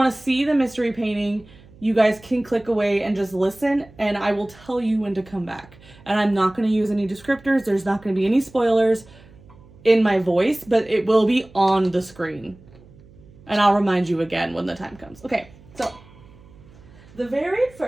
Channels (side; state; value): right; noise; hum, 24 dB below the sound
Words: to see the mystery painting, you guys can click away and just listen, and I will tell you when to come back. And I'm not going to use any descriptors. There's not going to be any spoilers in my voice, but it will be on the screen. And I'll remind you again when the time comes. Okay, so the very